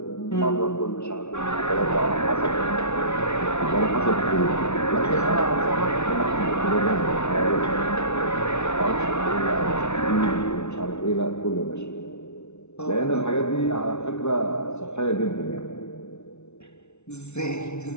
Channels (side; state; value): right; late; 0.82 ms